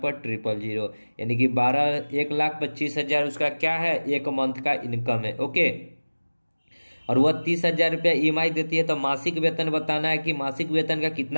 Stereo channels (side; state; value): both; inverted; correlation -1.00